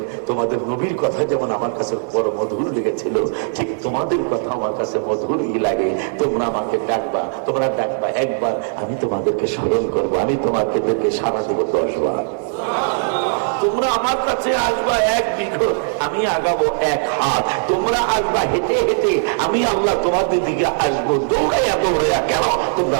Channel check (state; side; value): silent; left; 66 dB below the other